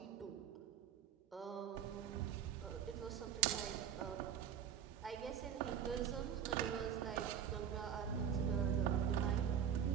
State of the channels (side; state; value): left; quieter; 8.8 dB